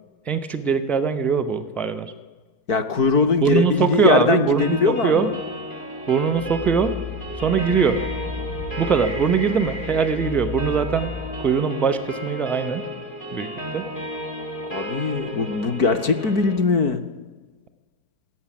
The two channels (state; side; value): late; right; 4.5 ms